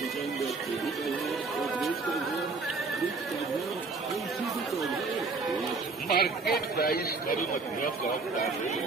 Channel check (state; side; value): quieter; left; 4.1 dB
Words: मार्केट प्राइस करू मध्य